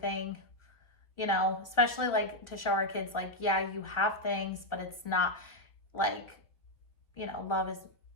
you know, especially like to show our kids, like, yeah, you have things, but it's not like, you know, love is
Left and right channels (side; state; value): right; late; 1.4 ms